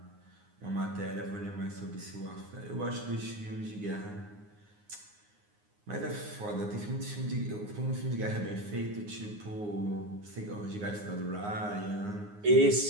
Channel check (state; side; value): late; left; 9.6 ms